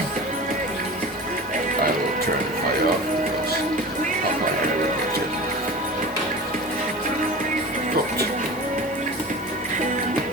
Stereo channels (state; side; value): normal; both; correlation 0.34